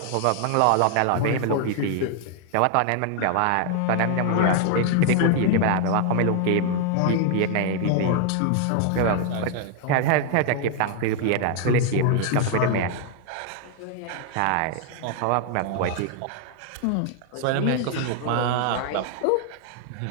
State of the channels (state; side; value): different; both; correlation 0.00